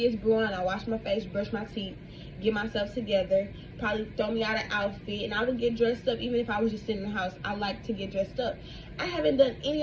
is brewing, I wash my face, brush my teeth, get myself together, probably throw me out an outfit, and I would get dressed up even if I was just sitting in the house. I like to get dressed up. I haven't done any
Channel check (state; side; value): identical; both; correlation 1.00